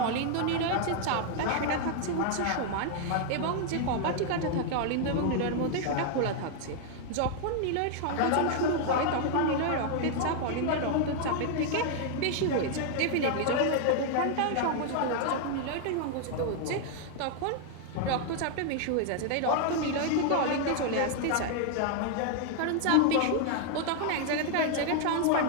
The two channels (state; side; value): different; both; correlation 0.00